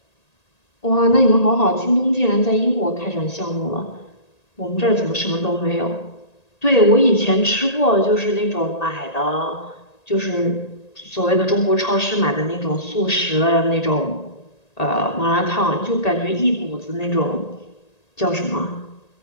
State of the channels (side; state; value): right; late; 1.8 ms